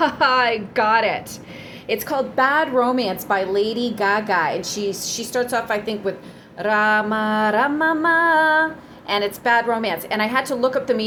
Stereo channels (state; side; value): identical; both; correlation 1.00